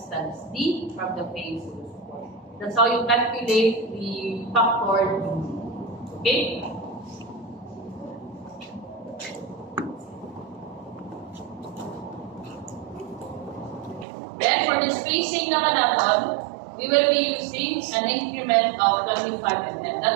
D from the base of the support. That's how you calculate the factor. Okay? Then for the spacing naman natin, we will be using an increment of 25 mm.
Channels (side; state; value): left; drops out; at 14.1 s